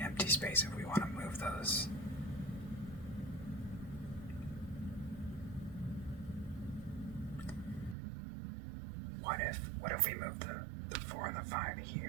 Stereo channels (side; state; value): left; drops out; at 8.0 s